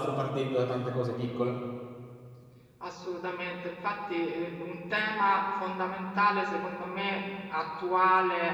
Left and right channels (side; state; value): both; identical; correlation 1.00